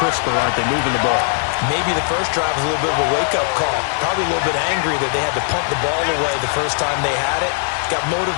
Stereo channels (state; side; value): silent; right; 63 dB below the other